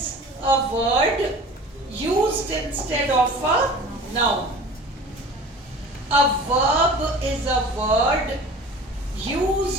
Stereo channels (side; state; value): both; normal; correlation 0.41